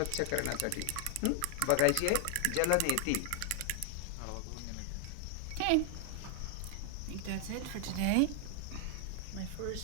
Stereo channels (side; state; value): both; different; correlation 0.00